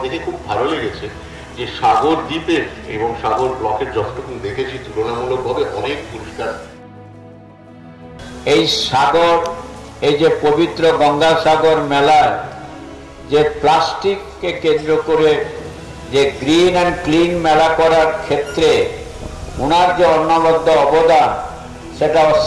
খুব ভালো লেগেছে যে সাগর দ্বীপের এবং সাগর ব্লকের যতটুকু দেখেছি তুলনামূলকভাবে অনেক পরিষ্কার। এই সাগর, এই যে পবিত্র গঙ্গাসাগর মেলায় যে প্লাস্টিককে কেন্দ্র করে যে গ্রিন অ্যান্ড ক্লিন মেলা করার ক্ষেত্রে ওনার যে অনবদ্য অবদান, সেটা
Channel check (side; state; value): both; identical; correlation 1.00